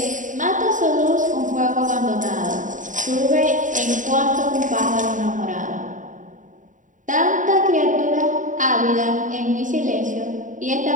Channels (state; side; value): late; left; 0.37 ms